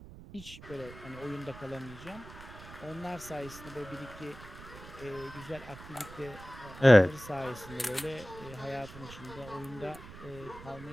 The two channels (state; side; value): noise; right; rumble, 16 dB below the sound